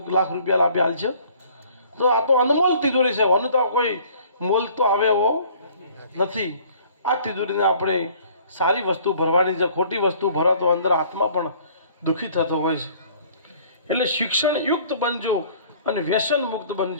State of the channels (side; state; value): both; inverted; correlation -0.54